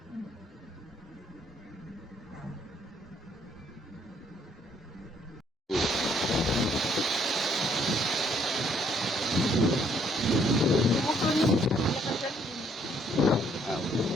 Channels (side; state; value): both; normal; correlation 0.66